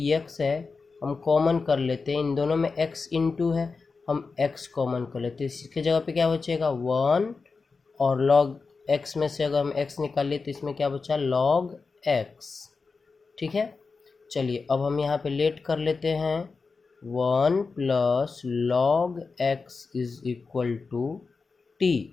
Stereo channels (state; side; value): quieter; right; 4.5 dB